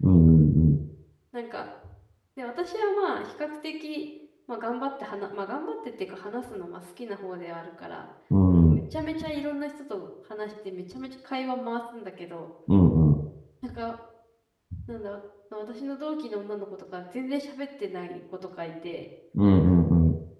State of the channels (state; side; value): identical; both; correlation 1.00